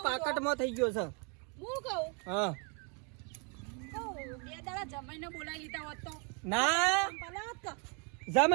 પાકટમાં થઈ ગયો છે. હું કહું હા બે દાડા જમાઈને બોલાવી લીધા હોત તો ના પલાત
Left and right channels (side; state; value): left; quieter; 35.6 dB